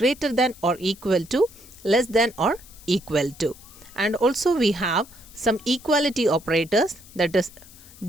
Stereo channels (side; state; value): left; noise; hiss, 21 dB below the sound